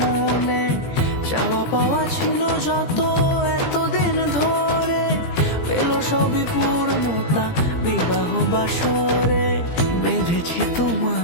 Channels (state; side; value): late; right; 17 ms